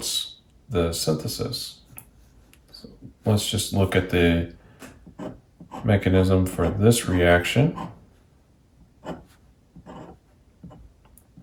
the synthesis. So let's just look at the mechanism for this reaction. So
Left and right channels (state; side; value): identical; both; correlation 1.00